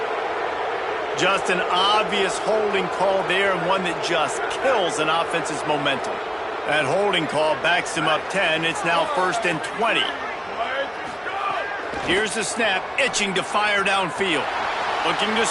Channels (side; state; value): both; identical; correlation 1.00